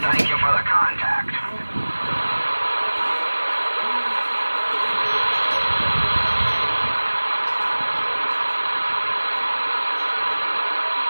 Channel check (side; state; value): both; inverted; correlation -1.00